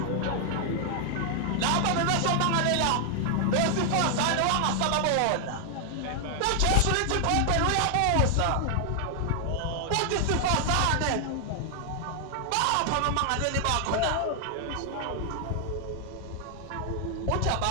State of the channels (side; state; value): both; different; correlation 0.00